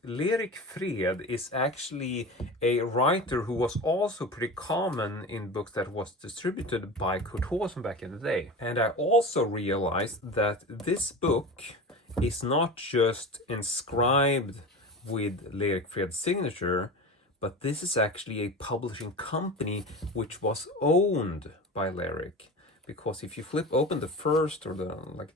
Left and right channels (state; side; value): normal; both; correlation 0.29